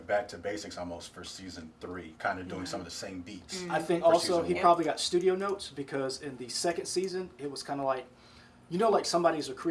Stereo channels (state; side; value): identical; both; correlation 1.00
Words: back to basics almost for season 3, kind of doing some of the same beats. I think for also season he one. probably got studio notes, because in the second season, it was kind of like, like somebody's a